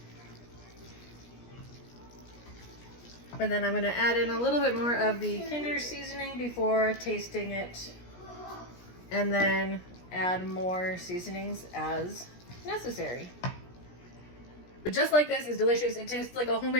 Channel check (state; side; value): late; right; 17 ms